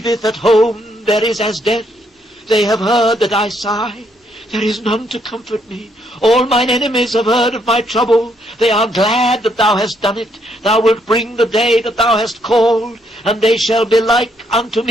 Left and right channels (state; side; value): normal; both; correlation 0.73